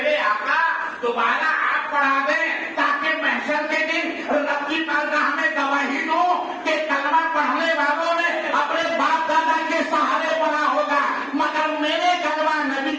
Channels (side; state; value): both; identical; correlation 1.00